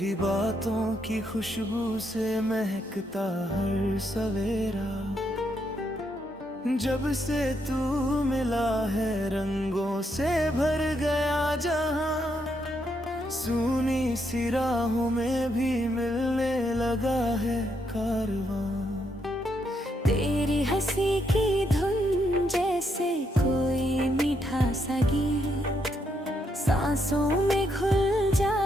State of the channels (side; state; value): both; normal; correlation 0.77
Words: बातों की खुशबू से महकता हर सवेरा। जब से तू मिला है रंगों से भर गया जहां, सूनी सी राहों में भी मिलने लगा है कारवां। तेरी हंसी की धुन जैसे कोई मीठा सा गीत, सांसों में घुल